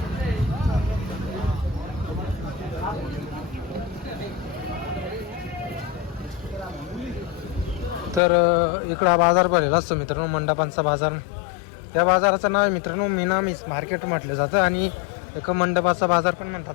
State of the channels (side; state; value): right; drops out; at 8.2 s